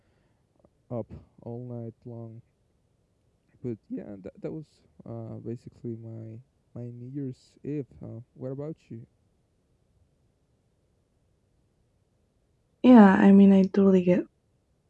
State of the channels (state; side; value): identical; both; correlation 1.00